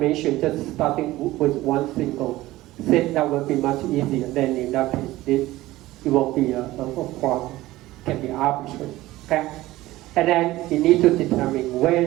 just starting with one single seed, that will be much easier. Then in that case, it won't be a problem. It can be arbitrary. Okay? And then you need to determine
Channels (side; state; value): left; quieter; 17.2 dB